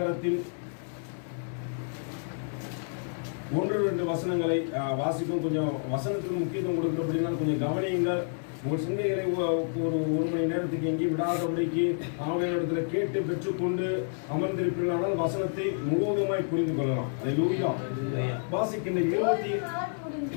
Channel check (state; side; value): silent; right; digital silence